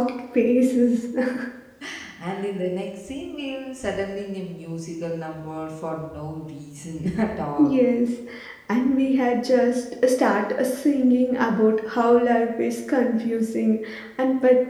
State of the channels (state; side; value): identical; both; correlation 1.00